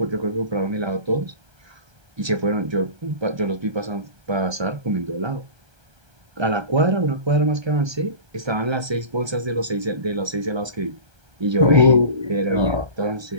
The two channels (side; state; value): left; late; 1.3 ms